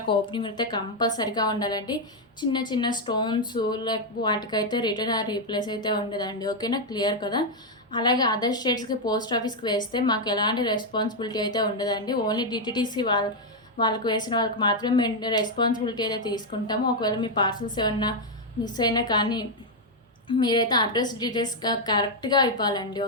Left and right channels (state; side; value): normal; both; correlation 0.01